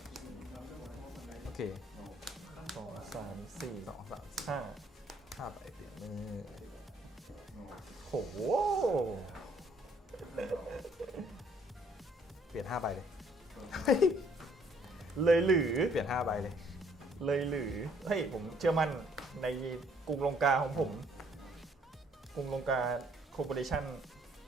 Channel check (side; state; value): both; normal; correlation 0.64